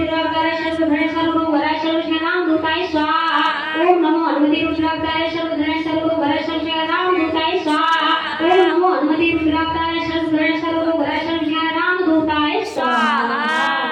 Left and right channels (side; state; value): both; identical; correlation 1.00